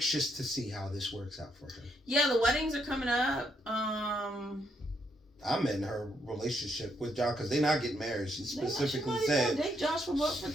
to see how this works out for her. Yeah, the weddings are coming up. I'm in her relationship with Josh because they're not getting married. She specifically said date Josh for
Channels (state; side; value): normal; both; correlation 0.75